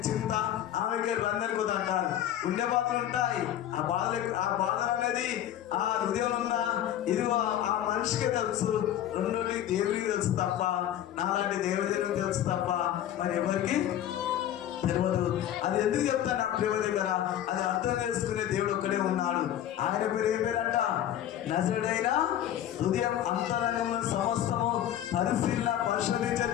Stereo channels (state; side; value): quieter; right; 11.4 dB